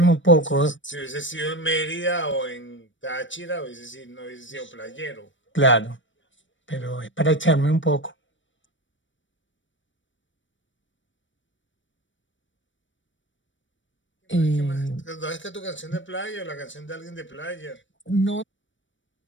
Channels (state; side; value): late; right; 0.55 ms